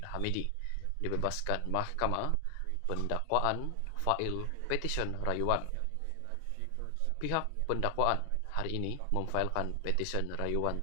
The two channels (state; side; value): different; both; correlation 0.00